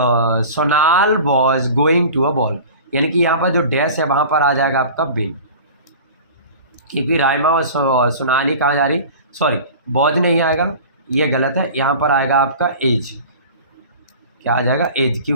Sonal was going to a ball, यानी कि यहाँ पर जो डैश है वहाँ पर आ जाएगा आपका बिल, क्योंकि राइमा और सोनाली कहाँ जा रही, सॉरी बॉज नहीं आएगा, ये गलत है, यहाँ पर आएगा आपका एज, क्या आ जाएगा एज,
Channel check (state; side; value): inverted; both; correlation -0.39